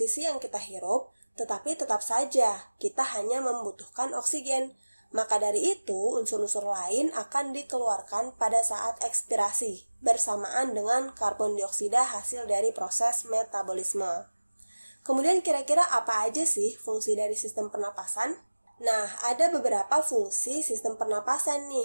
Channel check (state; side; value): inverted; both; correlation -1.00